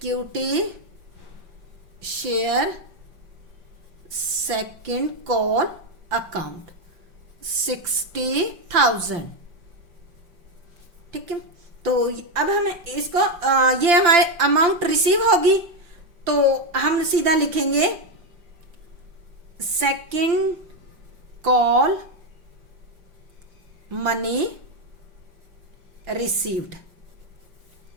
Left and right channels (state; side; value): late; left; 5.8 ms